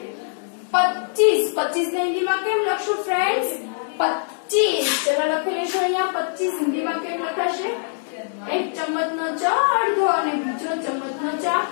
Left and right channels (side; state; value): right; silent; 64 dB below the other